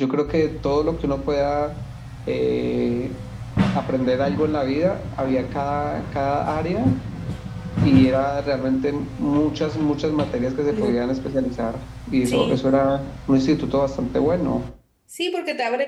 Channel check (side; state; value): both; identical; correlation 1.00